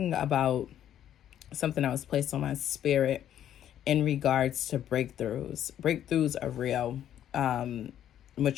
about something that was placed on my spirit in regards to breakthroughs. Breakthroughs are real.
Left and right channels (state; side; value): quieter; right; 10.7 dB